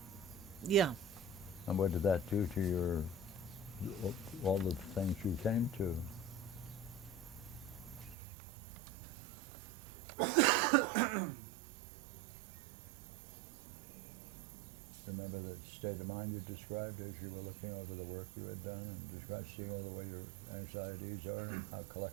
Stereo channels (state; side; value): drops out; left; at 8.2 s